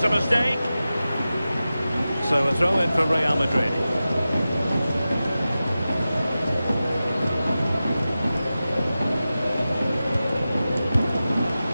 a mistake. So a throw in for Real Madrid.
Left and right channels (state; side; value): inverted; both; correlation -0.94